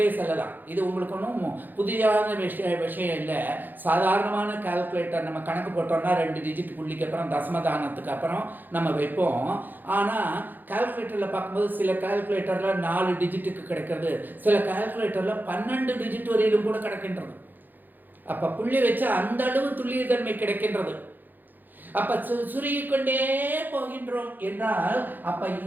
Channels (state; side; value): late; left; 0.088 ms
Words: செல்லலாம். இது உங்களுக்கு ஒன்றும் புதியான விஷயம் இல்லை. சாதாரணமான கால்குலேட்டர் நம்ம கணக்கு போட்டோம்னா 2 டிஜிட் புள்ளிக்கு அப்புறம் தசமதானத்துக்கு அப்புறம் நம்ம வைப்போம். ஆனால் கால்குலேட்டரில் பார்க்கும்போது சில கால்குலேட்டரில் 4 டிஜிட்டுக்கு கிடைக்கிறது, சில கால்குலேட்டரில் 12 டிஜிட் வரையிலும் கூட கிடைக்கின்றது. அப்போ புள்ளி வச்சு அந்த அளவு துல்லியத்தன்மை கிடைக்கின்றது. அப்ப சுருகிக்கொண்டே போகின்றோம் என்றால் அப்ப